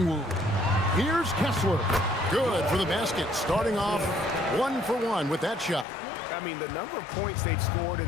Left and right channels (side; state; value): right; drops out; at 5.9 s